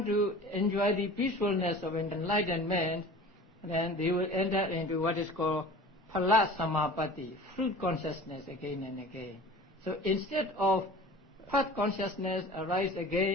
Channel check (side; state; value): both; normal; correlation 0.40